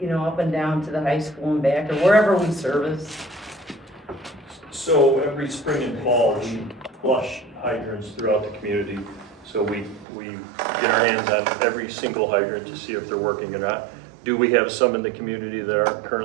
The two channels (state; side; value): drops out; left; at 10.1 s